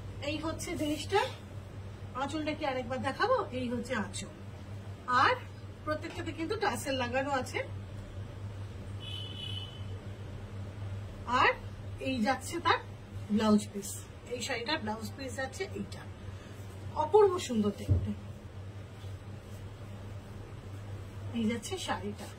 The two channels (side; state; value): both; identical; correlation 1.00